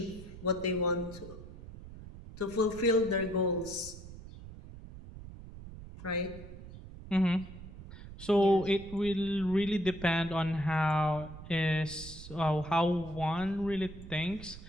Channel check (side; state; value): right; noise; rumble, 14 dB below the sound